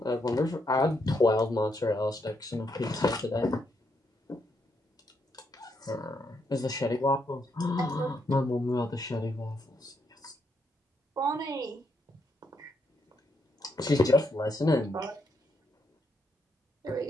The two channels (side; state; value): both; normal; correlation 0.78